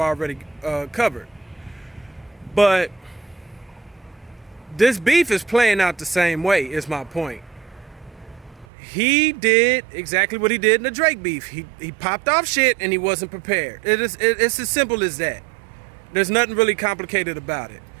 covered. But this beef is playing out the same way, is my point. He did exactly what he did in the Drake beef. He popped off shit and he wasn't prepared. It's as simple as that. There's nothing really complicated about it.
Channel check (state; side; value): drops out; left; at 8.7 s